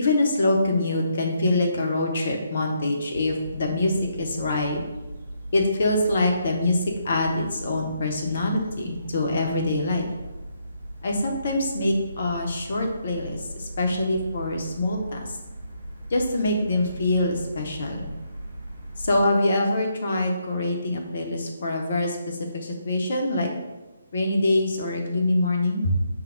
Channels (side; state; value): both; inverted; correlation -0.76